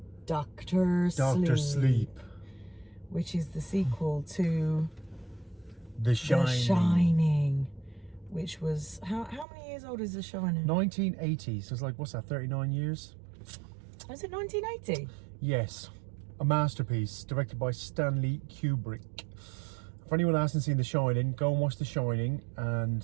Doctor Sleep. Which is the sequel to The Shining. The Shining. Which was... How many years old is The Shining? 1980. So it's like, what's that, 39 years? Was it 1980? Yes. A masterpiece directed by Stanley Kubrick. For anyone that hasn't seen The Shining, go and watch The Shining. And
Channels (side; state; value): left; drops out; at 9.5 s